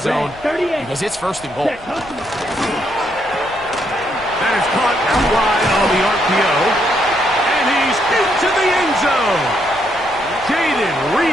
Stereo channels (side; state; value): left; noise; rumble, 21 dB below the sound